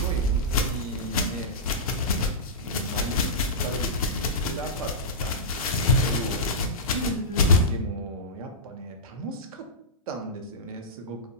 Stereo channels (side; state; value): both; normal; correlation -0.15